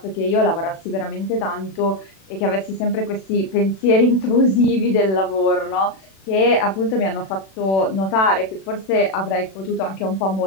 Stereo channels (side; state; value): right; late; 36 ms